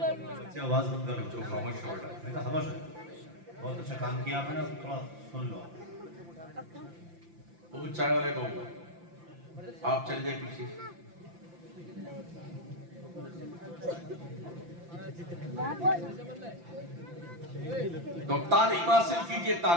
आवाज बंद करो, जो खामोश हो रहा है। खामोश है, बहुत अच्छा काम किया आपने, थोड़ा सुन लो। वो चाय वाले को आप चल जाए पीछे। तो तालीम हासिल कीजिए,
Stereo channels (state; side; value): late; left; 5.8 ms